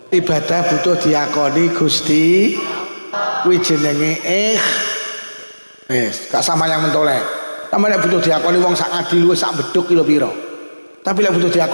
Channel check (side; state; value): both; inverted; correlation -1.00